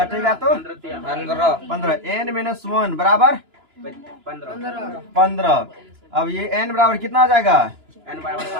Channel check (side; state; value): left; late; 2.9 ms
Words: तो 15। n माइनस 1 बराबर 15। अब ये n बराबर कितना आ जाएगा?